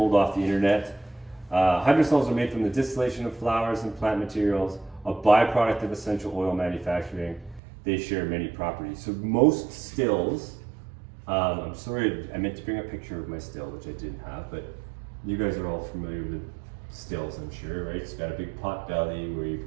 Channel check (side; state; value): left; drops out; at 7.6 s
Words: off the internet. Hydrosols are made from the distillation of flowers and plant materials, a byproduct of essential oil manufacturing. They share many properties. So most stills, I'm sorry, I meant to bring a picture of my still, which I didn't have, but you guys are all familiar with stills, I'm sure, right? It's got a big pot belly where you